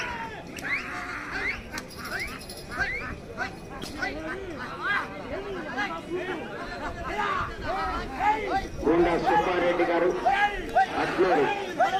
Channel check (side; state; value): both; identical; correlation 1.00